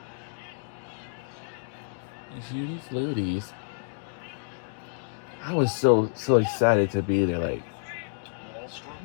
Judy Fluties. I was so excited to be there. Like,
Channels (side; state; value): right; silent; digital silence